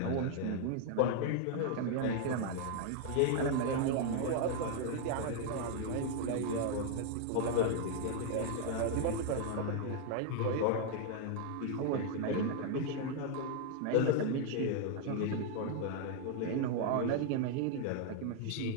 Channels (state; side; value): different; both; correlation 0.00